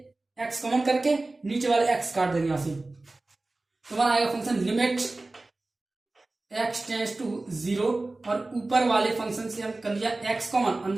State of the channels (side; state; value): left; quieter; 3.1 dB